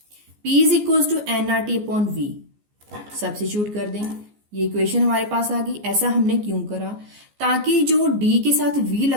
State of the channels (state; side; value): late; left; 14 ms